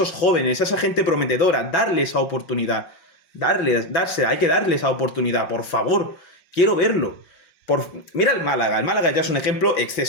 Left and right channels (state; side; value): late; right; 5.6 ms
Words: jóvenes, a esa gente prometedora, darle esa oportunidad. Hay que darle esa oportunidad, por favor. Quiero verlo. Mira el Málaga ya es un ejemplo